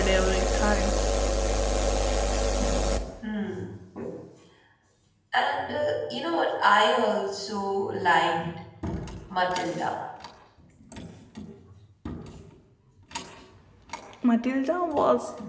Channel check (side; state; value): both; identical; correlation 1.00